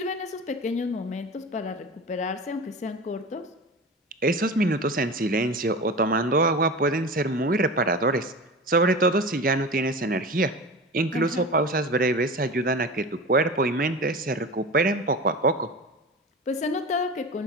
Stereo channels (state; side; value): normal; both; correlation 0.30